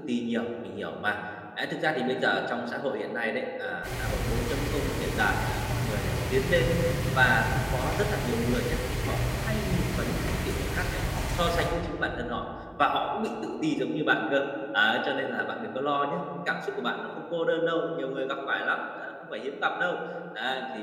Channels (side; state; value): both; identical; correlation 1.00